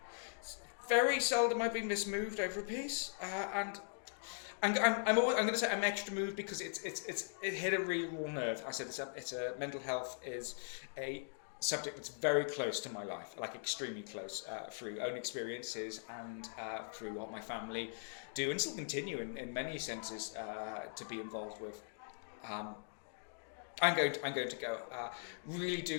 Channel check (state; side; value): silent; right; digital silence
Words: Very seldom I've been this moved over a piece, and I'm going to say I'm extra moved because it hit a really raw nerve. I said it's a mental health is a subject that's very close to my life, like extremely close, through own experiences and through what my family do and still continue in many senses to be involved with. I'm going to go. Really